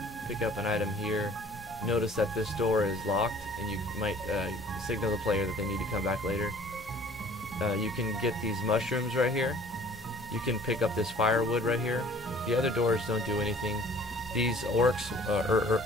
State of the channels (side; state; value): left; noise; hum, 24 dB below the sound